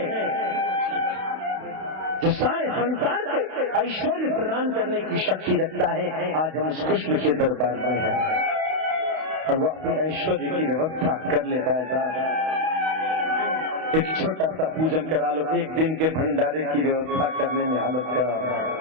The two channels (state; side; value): late; left; 32 ms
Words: जो सारे संसार को ऐश्वर्य प्रदान करने की शक्ति रखता है। आज हम उस कृष्ण के दरबार में हैं और वह अपने ऐश्वर्य की व्यवस्था कर लेता है। साहब एक छोटा सा पूजन करा लो, एक दिन के भंडारे की व्यवस्था करने में हालत खराब है।